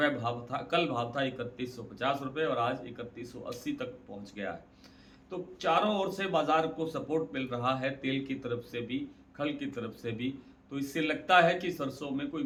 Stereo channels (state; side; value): identical; both; correlation 1.00